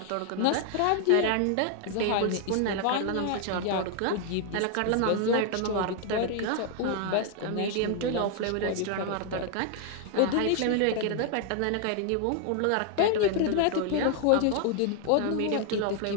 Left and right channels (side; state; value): both; different; correlation 0.00